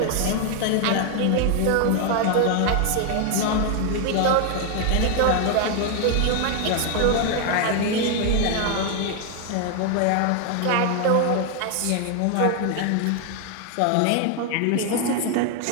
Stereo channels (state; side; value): different; both; correlation 0.00